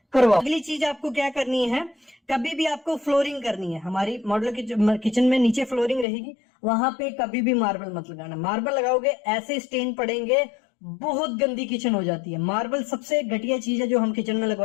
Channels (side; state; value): right; drops out; at 6.1 s